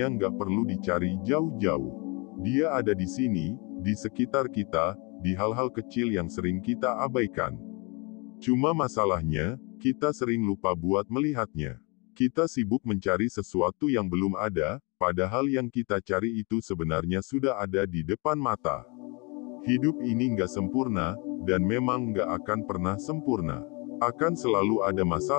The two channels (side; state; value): right; quieter; 30.3 dB